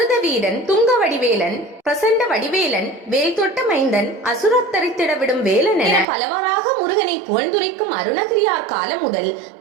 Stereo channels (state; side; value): drops out; left; at 6.1 s